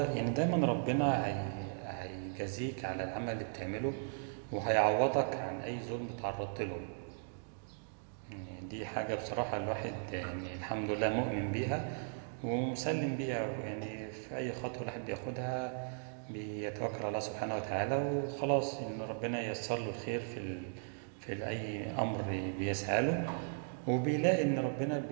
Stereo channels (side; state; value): left; silent; digital silence